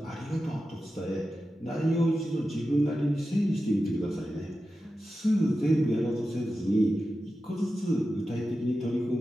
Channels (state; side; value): normal; both; correlation 0.92